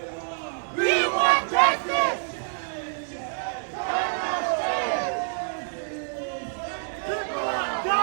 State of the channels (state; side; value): silent; left; 59 dB below the other